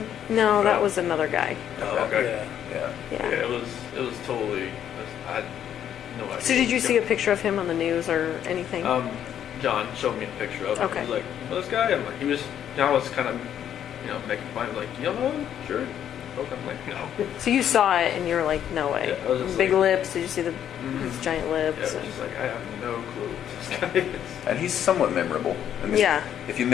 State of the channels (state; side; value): quieter; right; 9.9 dB